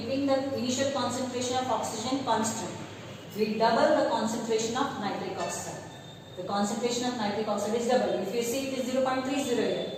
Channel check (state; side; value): identical; both; correlation 1.00